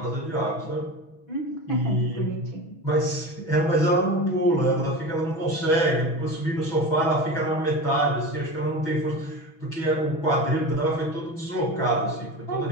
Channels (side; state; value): right; late; 6.1 ms